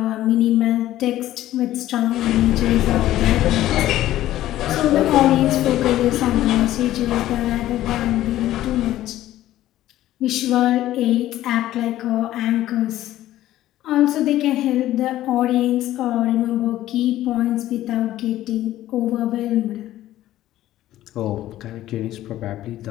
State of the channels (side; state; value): right; quieter; 14.1 dB